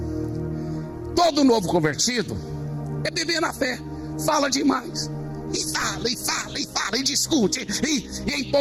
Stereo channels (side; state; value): both; identical; correlation 1.00